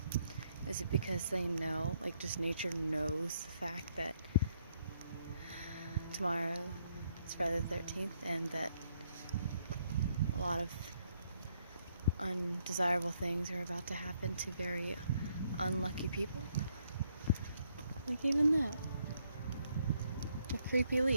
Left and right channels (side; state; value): both; inverted; correlation -0.73